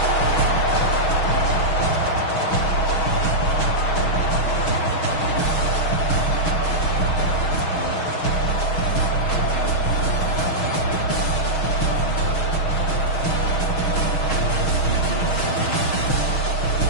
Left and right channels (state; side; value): late; right; 6.3 ms